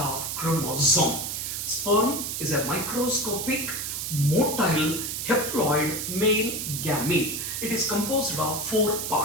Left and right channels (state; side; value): noise; right; hiss, 4 dB below the sound